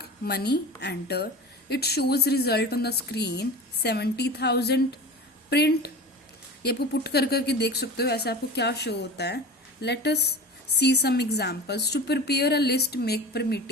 money enter, it shows result on the screen 70,000 print. ये आपको पुट कर करके देख सकते हो ऐसे आपको क्या शो होता है। Let us see some examples. To prepare a list, make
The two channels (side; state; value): both; normal; correlation 0.33